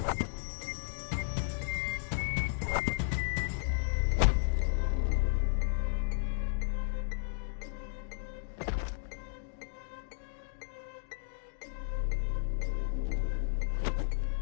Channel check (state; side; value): silent; right; digital silence